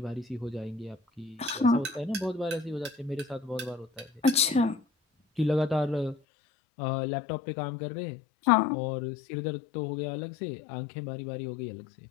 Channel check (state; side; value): drops out; right; at 6.2 s